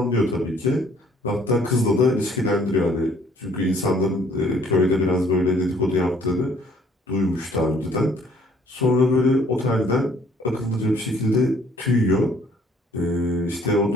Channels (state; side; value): normal; both; correlation 0.60